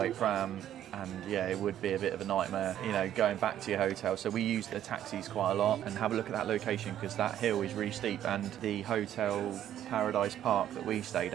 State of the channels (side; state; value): left; quieter; 11.2 dB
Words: pram. And yeah, it would be a bit of a nightmare, you know, going back to your hotel. So we use the taxis quite a lot, and have a look at that location because that hill is really steep. And the hotel Paradise Park that we stayed